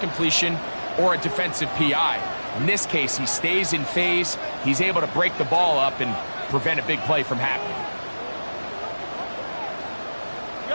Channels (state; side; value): inverted; both; correlation -1.00